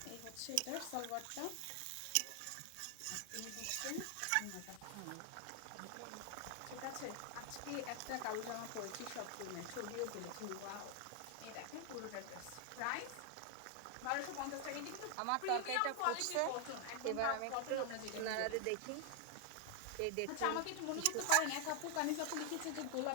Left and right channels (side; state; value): both; different; correlation 0.00